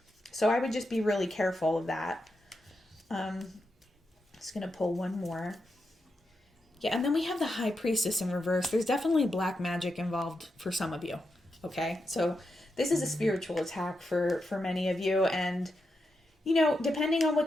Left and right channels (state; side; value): normal; both; correlation 0.86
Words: So I would just be really careful of that. Just going to pull one more. Yeah, and then we have the High Priestess in reverse. There's definitely black magic involved for some of you, okay? So this is a spiritual attack for many of you, and, depending on what